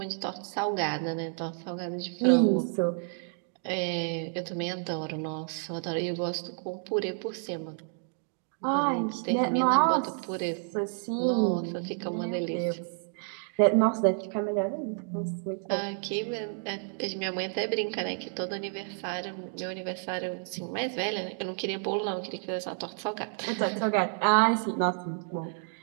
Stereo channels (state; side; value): silent; left; 58 dB below the other